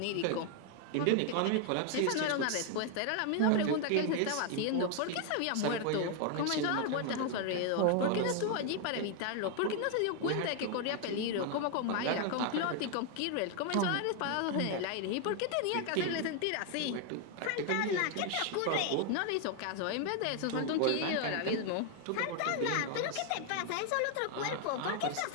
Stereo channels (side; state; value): both; different; correlation 0.00